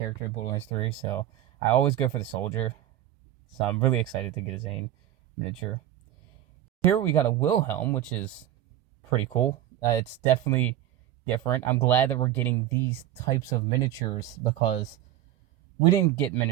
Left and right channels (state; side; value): quieter; left; 12.5 dB